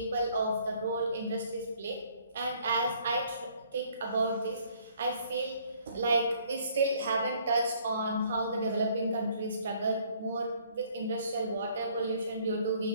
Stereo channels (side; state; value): both; inverted; correlation -0.61